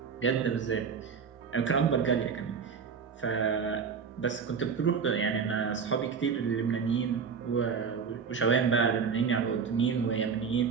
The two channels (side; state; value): left; quieter; 6.2 dB